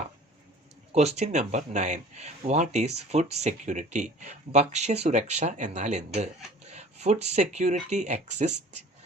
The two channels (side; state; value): both; normal; correlation 0.46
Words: Question number 9. What is food security? ഭക്ഷ്യസുരക്ഷ എന്നാൽ എന്ത്? Food security exists